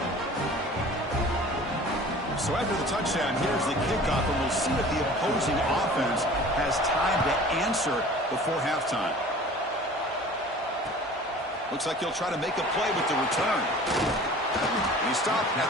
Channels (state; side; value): normal; both; correlation 0.44